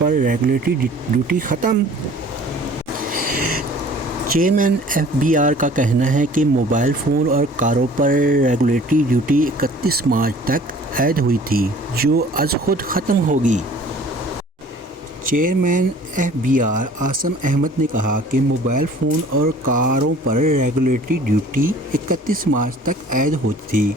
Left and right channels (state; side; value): normal; both; correlation 0.50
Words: पर रेगुलेटरी ड्यूटी ख़त्म? चेयरमैन FBR का कहना है कि मोबाइल फ़ोन और कारों पर रेगुलेटरी ड्यूटी 31 मार्च तक ऐड हुई थी, जो आज खुद ख़त्म होगी। चेयरमैन FBR आसम अहमद ने कहा कि मोबाइल फ़ोन और कारों पर रेगुलेटरी ड्यूटी 31 मार्च तक ऐड होती थी,